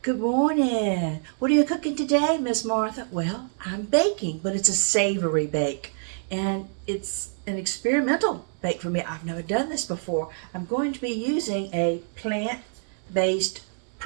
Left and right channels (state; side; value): silent; left; digital silence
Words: Good morning. What are you cooking today, Miss Martha? Well, I'm baking, but it's a savory bake. And it's an experimental bake for me. I've never done this before. I'm going to be using a plant-based